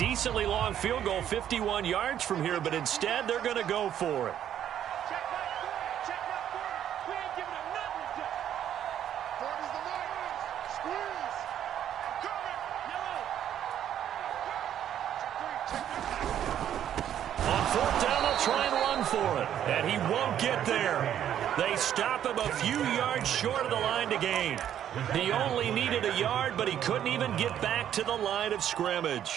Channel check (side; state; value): left; quieter; 10.3 dB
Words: long field goal, 51 yards from here, but instead they're going to go for it. And he won't get there. They stop him a few yards short of the line to gain. He only needed a yard, but he couldn't even get back to the line of